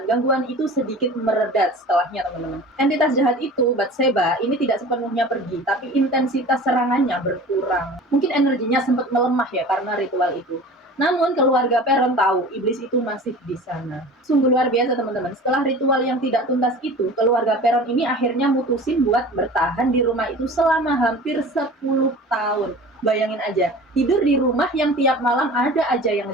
gangguan itu sedikit meredat setelahnya teman-teman. Entitas jahat itu, Bathsheba, ini tidak sepenuhnya pergi, tapi intensitas serangannya berkurang. Mungkin energinya sempat melemah ya karena ritual itu. Namun keluarga Perron tahu iblis itu masih di sana. Sungguh luar biasa teman-teman. Setelah ritual yang tidak tuntas itu, keluarga Perron ini akhirnya mutusin buat bertahan di rumah itu selama hampir 10 tahun. Bayangin aja, tidur di rumah yang tiap malam ada aja yang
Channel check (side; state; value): both; normal; correlation 0.40